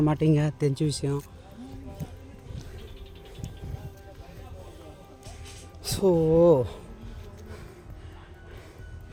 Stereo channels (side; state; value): both; identical; correlation 1.00